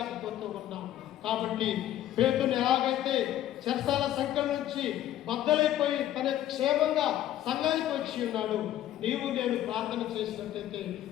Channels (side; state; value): right; quieter; 12.6 dB